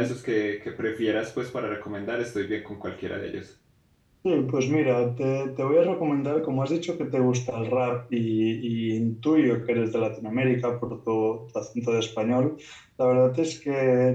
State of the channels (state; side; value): identical; both; correlation 1.00